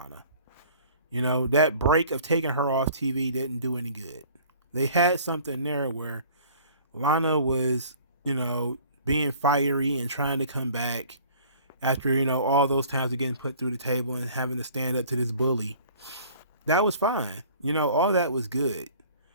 You know, that break of taking her off TV didn't do any good. They had something there where Lana was, being fiery and trying to come back after, all those times of getting put through the table and having to stand up to this bully. That was fine. All that was good.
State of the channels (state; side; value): inverted; both; correlation -0.50